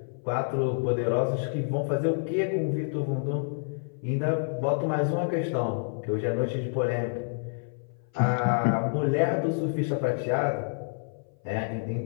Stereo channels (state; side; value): silent; right; 57 dB below the other